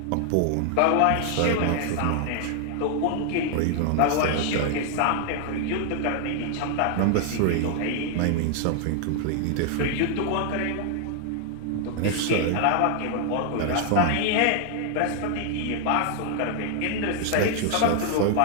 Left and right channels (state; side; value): different; both; correlation 0.00